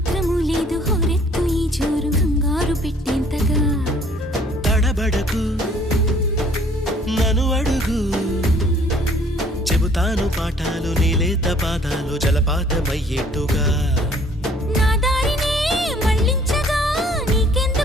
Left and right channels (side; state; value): both; normal; correlation 0.58